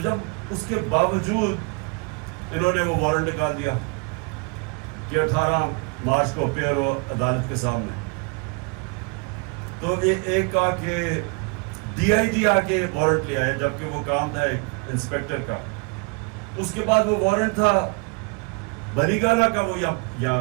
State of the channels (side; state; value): left; quieter; 32.0 dB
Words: جب اس کے باوجود انہوں نے وہ وارنٹ نکال دیا کہ 18 مارچ کو اپیئر ہو عدالت کے سامنے، تو ایک آ کے DIG آ کے وارنٹ لیا ہے، جبکہ وہ کام تھا ایک انسپیکٹر کا۔ اس کے بعد وہ وارنٹ تھا بنی گالا کا، وہ